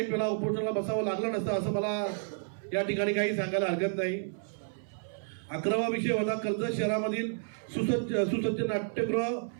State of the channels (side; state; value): left; silent; 57 dB below the other